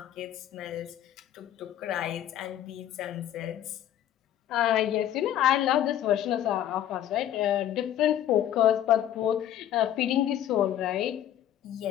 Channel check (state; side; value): quieter; right; 11.4 dB